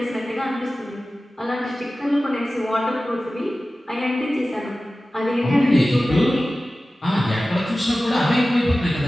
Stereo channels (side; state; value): both; normal; correlation 0.96